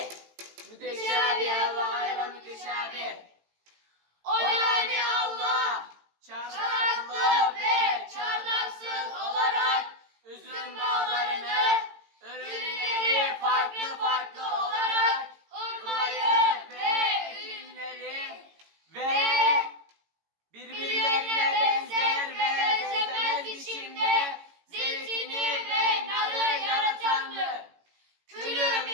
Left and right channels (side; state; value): left; late; 18 ms